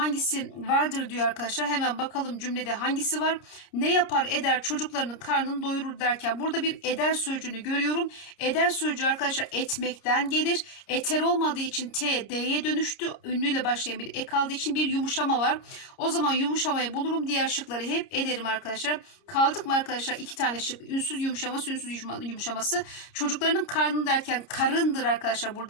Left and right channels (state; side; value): late; right; 30 ms